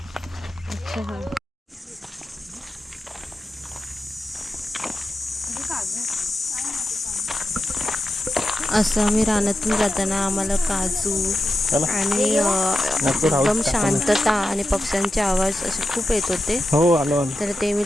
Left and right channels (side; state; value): both; normal; correlation 0.90